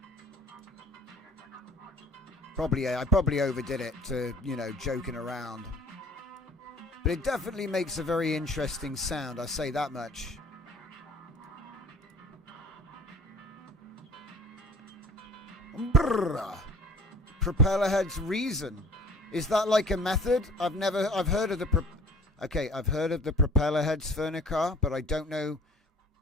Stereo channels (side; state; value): both; normal; correlation 0.49